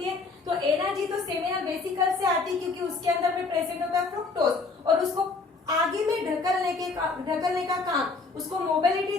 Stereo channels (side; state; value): right; quieter; 4.1 dB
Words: है। तो एनर्जी तो सेमिनल वेसिकल से आती है क्योंकि उसके अंदर में प्रेजेंट होता है फ्रुक्टोज, और उसको आगे में ढकलने का काम, उसको मोबिलिटी